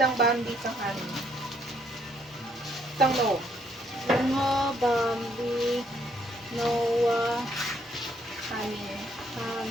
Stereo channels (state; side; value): normal; both; correlation 0.70